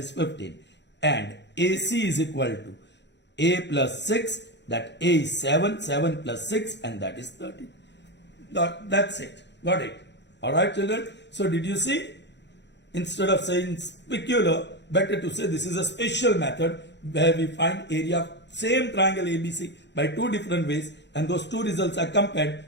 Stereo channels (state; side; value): late; right; 0.51 ms